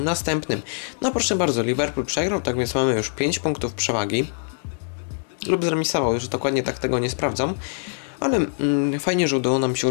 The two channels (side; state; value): right; silent; 61 dB below the other